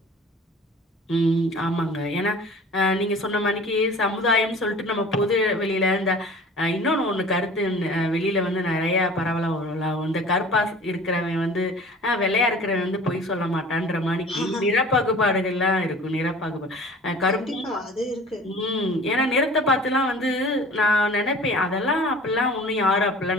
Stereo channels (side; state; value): both; normal; correlation 0.44